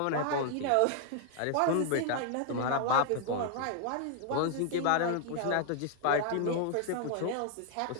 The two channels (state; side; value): different; both; correlation 0.00